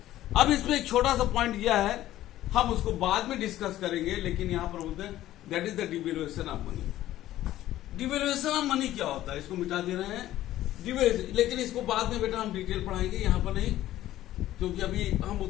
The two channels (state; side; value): quieter; right; 14.1 dB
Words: अब इसमें एक छोटा सा point यह है, हम उसको बाद में डिस्कस करेंगे, लेकिन यहां पर बोलते हैं that is the devaluation of money. Devaluation of money क्या होता है, इसको मिटा दे रहे हैं लेकिन इसको बाद में बेटा हम डिटेल पढ़ाएंगे, यहां पर नहीं, क्योंकि अभी हम